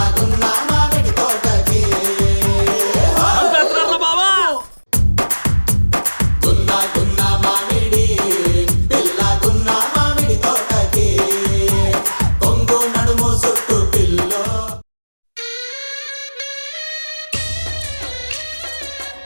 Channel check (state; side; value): inverted; both; correlation -1.00